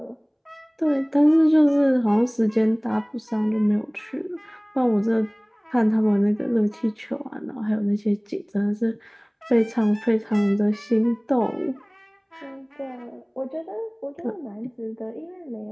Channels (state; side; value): identical; both; correlation 1.00